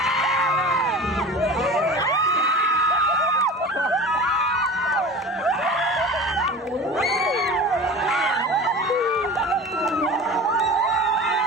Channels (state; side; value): normal; both; correlation 0.36